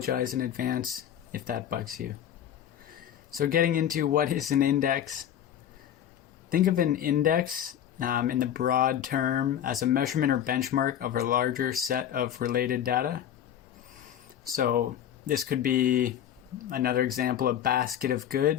in advance if that bugs you. So getting into what is an index. Think of an index in the broad term as a measurement or benchmark of a larger set of related data. So this could be another example, a basket of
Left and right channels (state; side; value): quieter; right; 10.2 dB